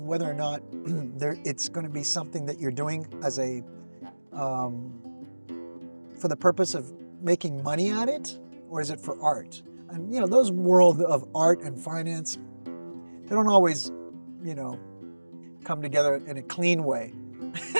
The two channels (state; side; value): inverted; both; correlation -1.00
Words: whether or not it's going to be something that you're doing as a for the purpose of making money at it, or is it for art? And those world of art and finance, they don't always come together in a clean way.